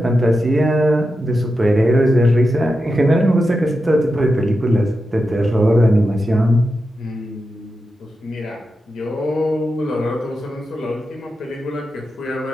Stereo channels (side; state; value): both; normal; correlation 0.89